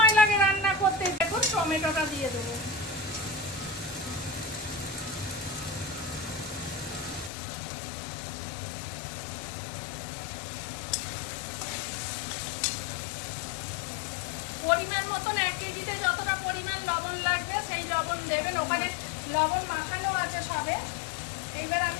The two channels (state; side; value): drops out; right; at 7.3 s